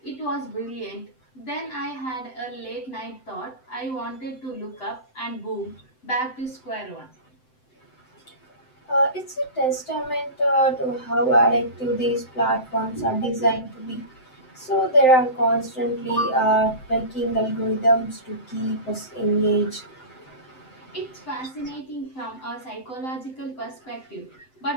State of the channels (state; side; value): late; right; 7.8 ms